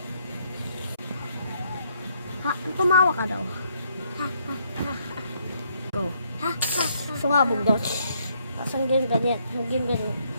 Tumawa ka daw. Go. Sumabog daw. Tapos ang ganyan.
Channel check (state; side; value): inverted; both; correlation -0.71